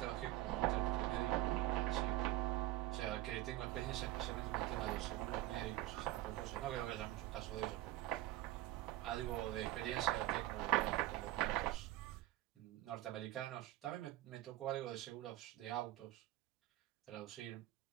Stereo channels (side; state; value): left; quieter; 15.8 dB